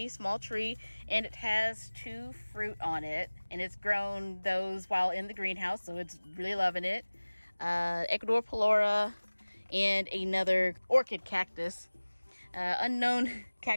small tree, and it has 2 fruit on it. And it's grown those while in the greenhouse, so it's really loving it. Ecuador Pelora and another orchid cactus. Unknown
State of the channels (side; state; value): both; inverted; correlation -1.00